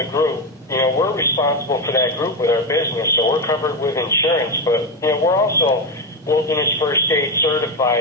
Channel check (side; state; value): both; normal; correlation 0.12